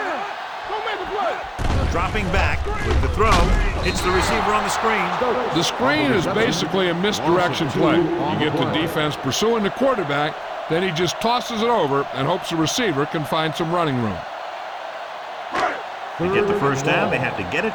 Don't make a play. Dropping back with the throw. It's the receiver on the screen. The screen is basically a misdirection play. You get the defense pursuing the quarterback, then he just tosses it over and hopes the receiver can find some running room. To get the first down, they have to get it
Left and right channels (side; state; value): both; identical; correlation 1.00